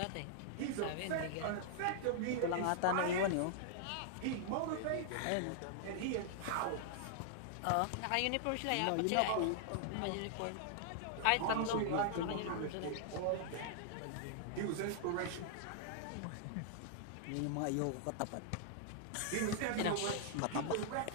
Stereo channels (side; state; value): both; different; correlation -0.01